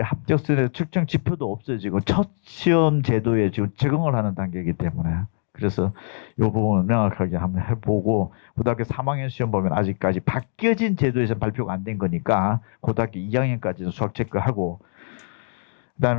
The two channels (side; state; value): right; silent; digital silence